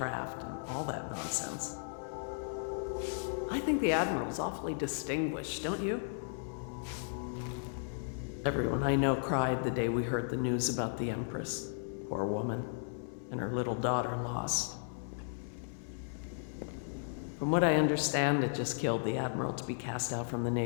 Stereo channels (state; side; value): silent; right; 54 dB below the other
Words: and all that nonsense. I think the Admiral's awfully distinguished, don't you? Everyone I know cried the day we heard the news about the Empress. Poor woman. And her little daughter lost. From what I understand, it just killed the Admiral to be cast out from the